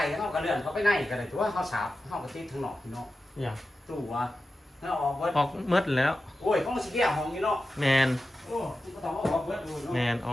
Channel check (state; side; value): normal; both; correlation 0.92